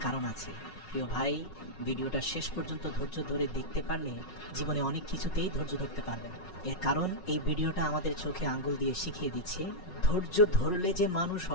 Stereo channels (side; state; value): right; late; 5.4 ms